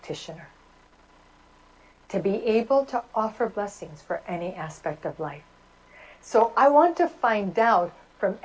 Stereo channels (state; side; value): identical; both; correlation 1.00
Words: To be able to offer blessings for any aspect of life. So I want to find out from